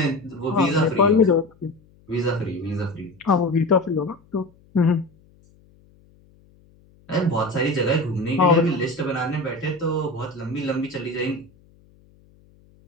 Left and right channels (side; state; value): left; noise; hum, 30 dB below the sound